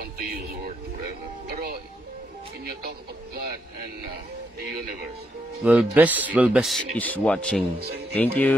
to use the word forever. Pero when you talk about God and the universe, Will best is watching. Thank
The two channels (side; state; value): both; normal; correlation 0.78